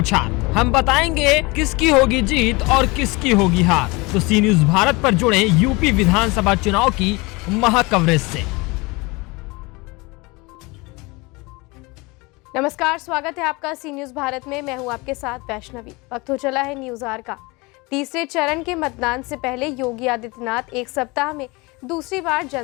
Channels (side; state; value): right; quieter; 25.3 dB